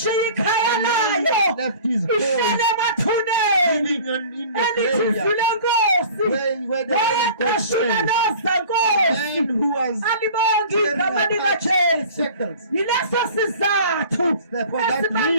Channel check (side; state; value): both; inverted; correlation -0.45